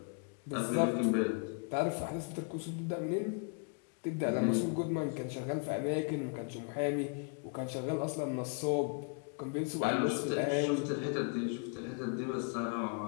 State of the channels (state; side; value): quieter; right; 39.5 dB